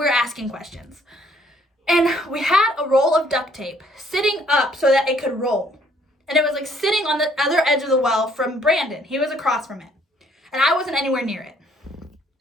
asking questions. And we had a roll of duct tape sitting up so that it could roll. And it was like sitting on the other edge of the well from Brandon. He was across from it. And I wasn't anywhere near it.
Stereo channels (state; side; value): normal; both; correlation 0.64